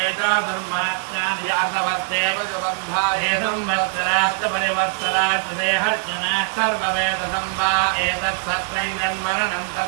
चातुर्मासानि यातवर्ते ते संवत्सराश्च परिवत्सराश्च ते हर्जनाः सर्ववेदसं वा एतत्सत्त्वं जन्मरणं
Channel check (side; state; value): left; silent; digital silence